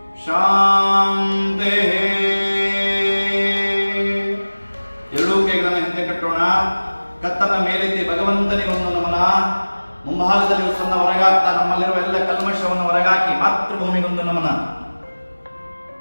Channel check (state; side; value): inverted; both; correlation -1.00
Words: ಶಾಂತೆ. ಎರಡೂ ಕೈಗಳನ್ನು ಹಿಂದೆ ಕಟ್ಟೋಣ. ಕತ್ತನ್ನ ಮೇಲೆತ್ತಿ ಭಗವಂತನಿಗೆ ಒಂದು ನಮನ. ಮುಂಭಾಗದಲ್ಲಿ ಉಸನ್ನ ಹೊರಗಾಗ್ತಾ ನಮ್ಮಲ್ಲಿರುವ ಎಲ್ಲ ಕಲ್ಮಶವನ್ನು ಹೊರಗಾಕಿ ಮಾತೃಭೂಮಿಗೊಂದು ನಮನ.